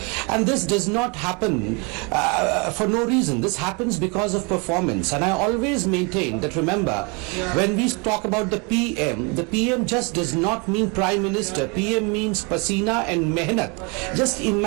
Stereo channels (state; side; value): quieter; left; 31.5 dB